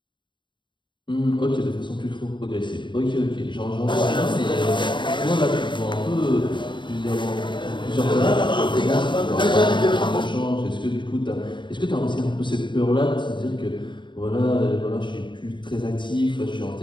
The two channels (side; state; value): right; late; 0.23 ms